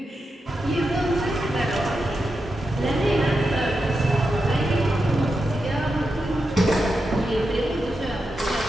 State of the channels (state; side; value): normal; both; correlation 0.88